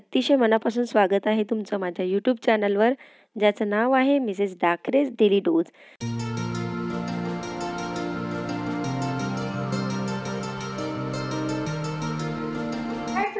मनापासून स्वागत आहे तुमचं माझ्या यूट्यूब चॅनलवर, ज्याचं नाव आहे मिसेस डाकरेज डेली डोज। हाय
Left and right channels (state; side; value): identical; both; correlation 1.00